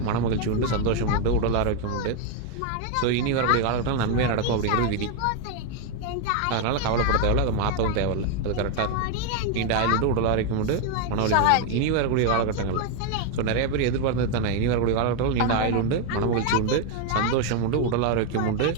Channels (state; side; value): different; both; correlation 0.01